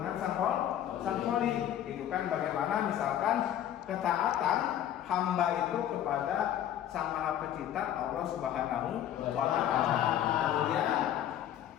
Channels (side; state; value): right; quieter; 11.1 dB